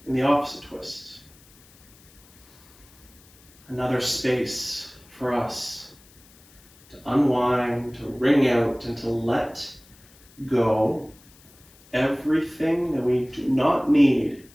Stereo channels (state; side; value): noise; left; hiss, 27 dB below the sound